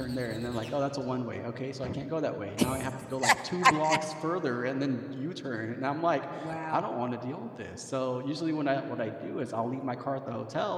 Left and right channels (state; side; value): identical; both; correlation 1.00